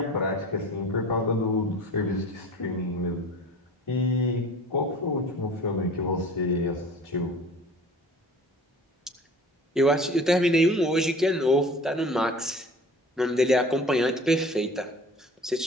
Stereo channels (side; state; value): both; normal; correlation 0.43